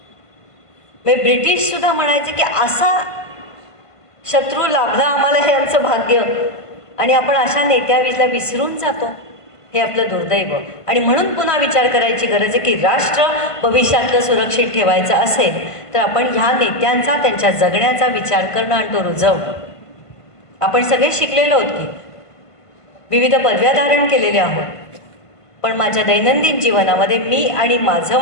म्हणजे ब्रिटिश सुद्धा म्हणायचे की असा शत्रू लाभला आम्हाला, हे आमचं भाग्य. आणि आपण अशा नेत्याला विसरून जातो, हे आपलं दुर्दैव. आणि म्हणून पुन्हा विचार करायची गरज आहे की राष्ट्र भविष्यातलं सुरक्षित ठेवायचं असेल तर आपण ह्या नेत्यांचा, त्यांच्या जगण्याचा विचार करणं आणि तो रुजवणं. आपण सगळे शिकलेलो आहोत की विविध पदव्या धारण केलेल्या आहोत, पण माझ्या दैनंदिन जीवनामध्ये मी आणि माझं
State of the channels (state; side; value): late; right; 1.5 ms